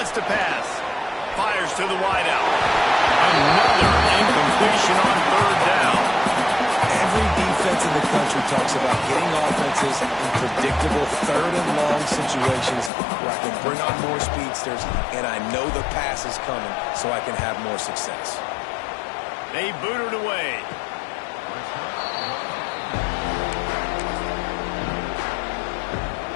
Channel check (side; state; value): right; drops out; at 12.9 s